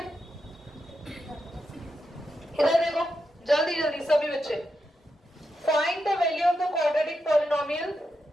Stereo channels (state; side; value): normal; both; correlation 0.86